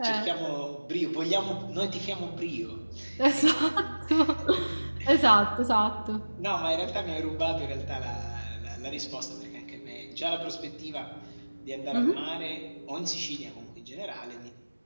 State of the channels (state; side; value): inverted; both; correlation -1.00